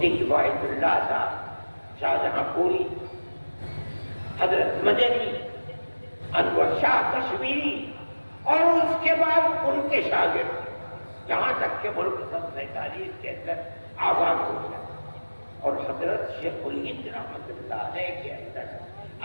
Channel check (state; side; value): inverted; both; correlation -1.00